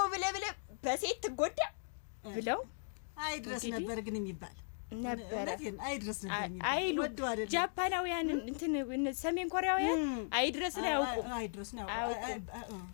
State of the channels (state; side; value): silent; right; digital silence